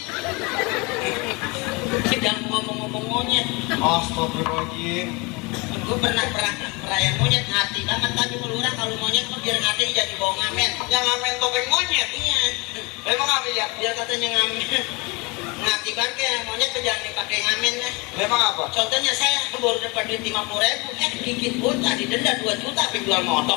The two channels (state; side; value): quieter; right; 27.4 dB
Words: Sedang ngomong-ngomong monyet. Astagfirullahaladzim. Gue pernah perayaan monyet hati banget tadi melurah kalau monyet tuh biar hati jadi bawa ngamen. Yang ngamen topeng monyet. Iya. Memang apa, ya? Biar katanya ngamen. Ngati banget ya monyet tuh jangan dipakai ngamen ya. Memang apa? Contohnya saya baru dapat duit 50.000, dikit pun tadi denda 2 juta tapi jual